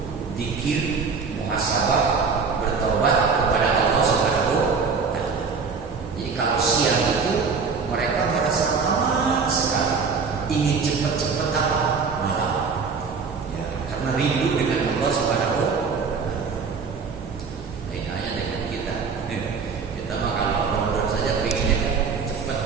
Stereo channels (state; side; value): quieter; left; 5.2 dB